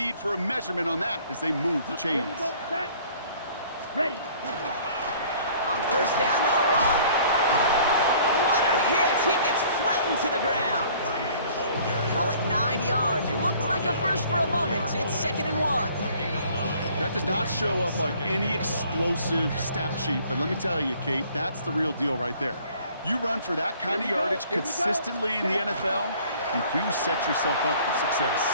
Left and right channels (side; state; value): both; inverted; correlation -0.54